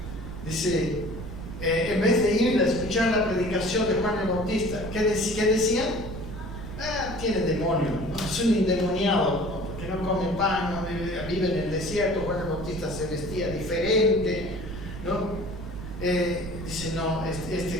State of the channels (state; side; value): noise; right; rumble, 9 dB below the sound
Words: dice, en vez de ir a escuchar la predicación de Juan el Bautista, ¿qué decían? Tiene demonio, ¿no? Es un endemoniado, ¿no? Porque no come pan, no vive en el desierto. Juan el Bautista se vestía diferente, ¿no? Dice, no,